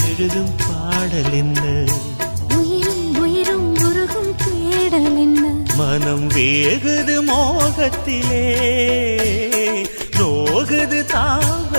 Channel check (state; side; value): inverted; both; correlation -1.00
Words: எழுதும் பாடல் என்ன? உயிரும் உயிரும் உருகும் தேடல் என்ன? மனம் வேகுது மோகத்திலே, நோகுது